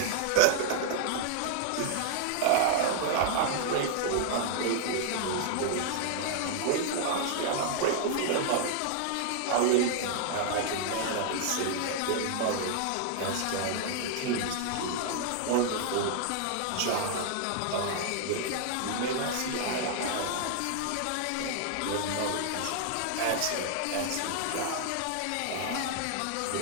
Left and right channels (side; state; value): both; different; correlation 0.00